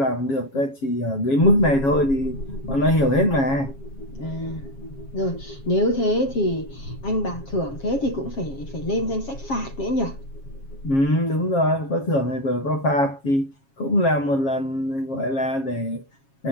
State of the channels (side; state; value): right; late; 7.3 ms